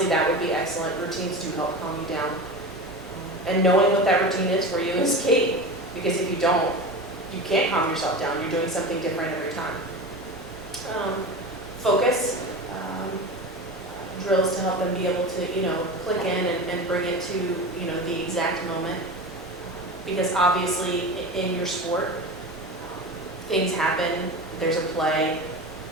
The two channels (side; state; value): both; normal; correlation 0.28